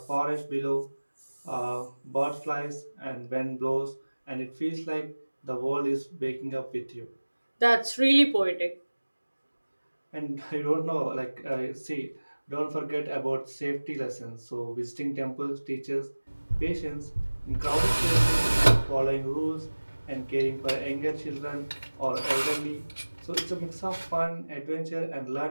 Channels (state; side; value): inverted; both; correlation -1.00